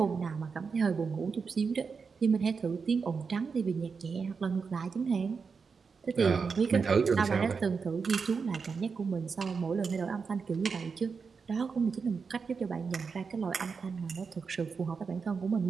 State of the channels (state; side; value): quieter; left; 5.3 dB